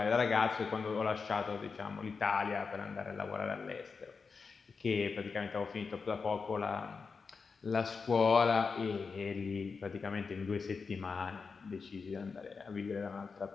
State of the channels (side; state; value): right; quieter; 5.0 dB